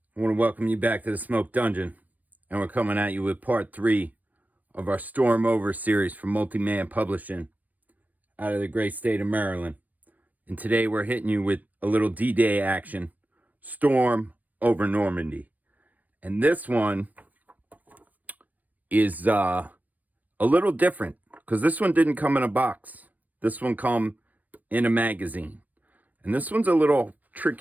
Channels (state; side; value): late; left; 0.081 ms